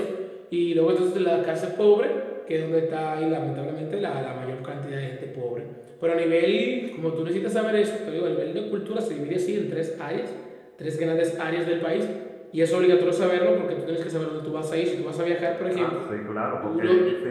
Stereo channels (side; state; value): both; identical; correlation 1.00